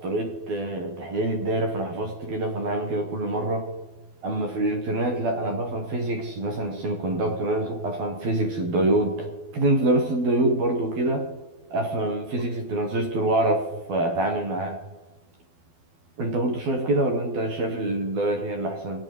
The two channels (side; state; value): left; late; 12 ms